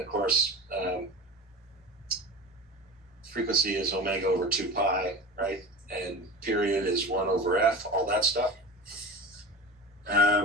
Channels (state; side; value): normal; both; correlation 0.31